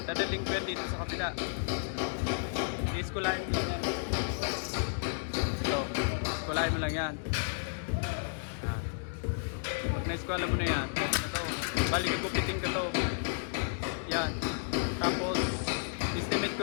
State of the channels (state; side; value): silent; right; digital silence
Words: dadaling ko yan dito sa kabila. I-skulahin mo lang yan. Ito, skulahin mo lang yan. Pag na-skula mo na yan, ito, balik gupitin ko to. Yan. Tapos, estimate ko